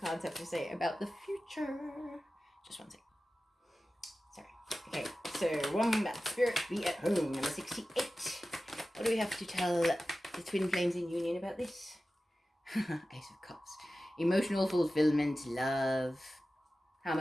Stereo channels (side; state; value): both; normal; correlation 0.95